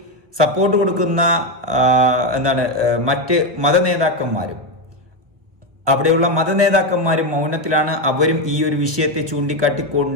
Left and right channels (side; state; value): left; late; 1.4 ms